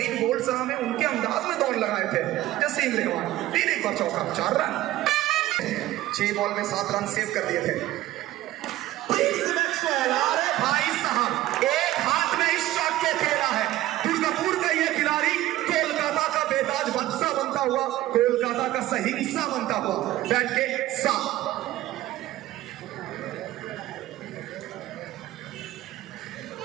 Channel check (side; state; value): left; quieter; 15.6 dB